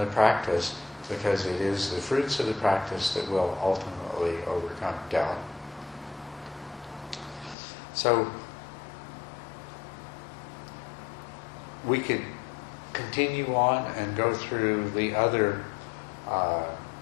practice, because it is the fruits of the practice that will ultimately overcome doubt. So we could continue on and go through the other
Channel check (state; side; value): drops out; right; at 7.6 s